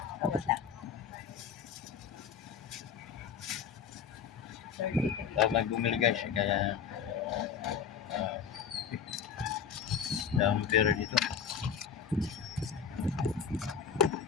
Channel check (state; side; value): quieter; right; 7.2 dB